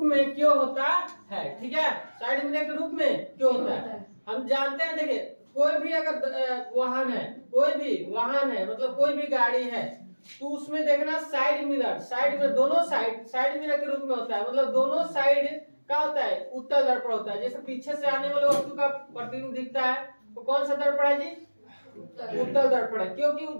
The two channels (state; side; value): inverted; both; correlation -1.00